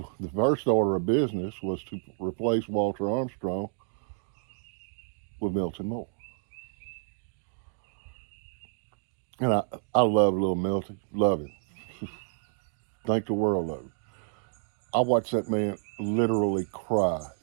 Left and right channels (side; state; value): left; silent; digital silence